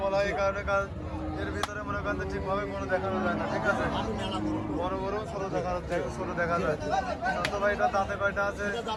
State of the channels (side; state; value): both; identical; correlation 1.00